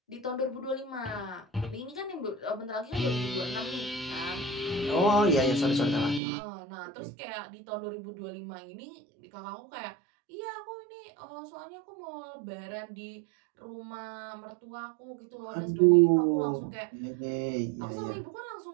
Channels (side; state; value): left; drops out; at 6.2 s